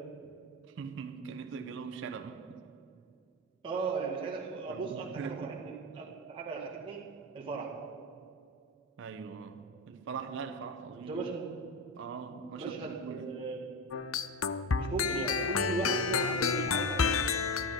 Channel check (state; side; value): normal; both; correlation 0.18